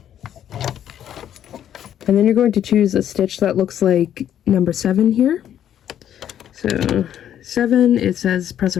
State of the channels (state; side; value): quieter; right; 10.3 dB